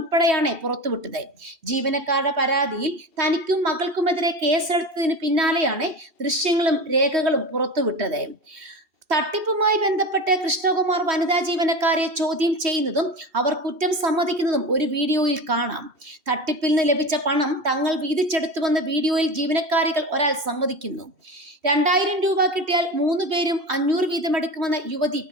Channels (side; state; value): left; late; 2.7 ms